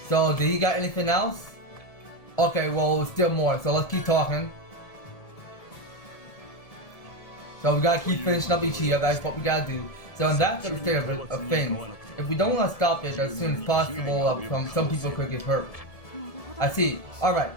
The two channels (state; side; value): late; right; 1.7 ms